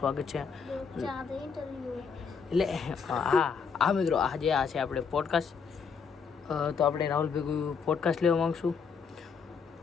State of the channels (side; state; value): right; quieter; 6.0 dB